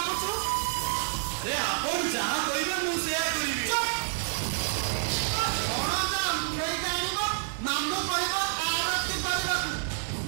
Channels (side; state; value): left; silent; digital silence